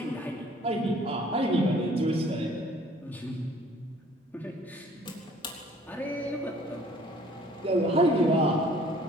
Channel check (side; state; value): both; normal; correlation 0.55